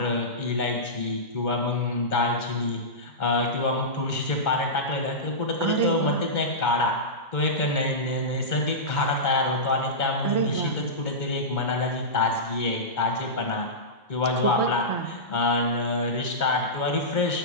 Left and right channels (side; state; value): right; late; 2.2 ms